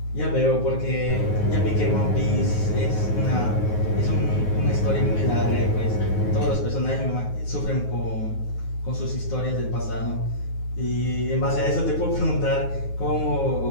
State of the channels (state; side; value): late; right; 9.4 ms